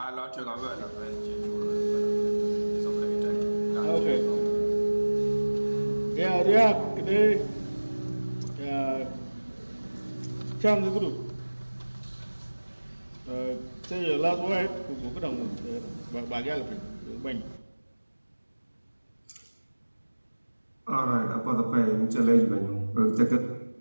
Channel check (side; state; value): both; inverted; correlation -1.00